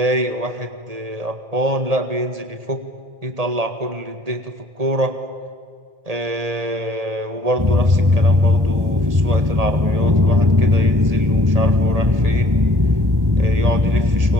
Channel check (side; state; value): left; late; 1.8 ms